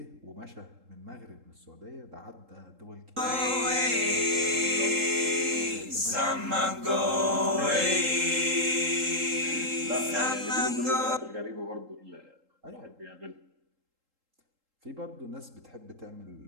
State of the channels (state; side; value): late; left; 3.7 ms